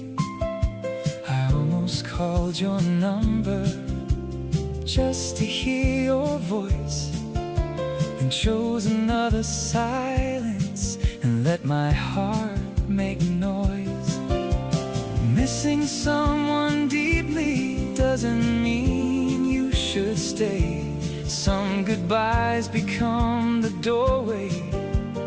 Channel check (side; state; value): both; identical; correlation 1.00